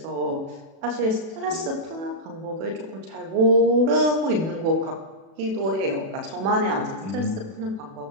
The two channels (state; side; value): late; left; 36 ms